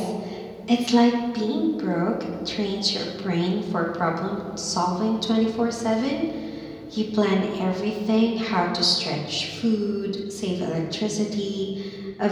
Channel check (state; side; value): identical; both; correlation 1.00